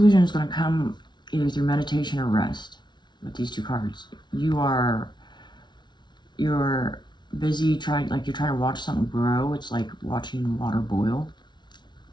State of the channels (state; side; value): late; right; 0.21 ms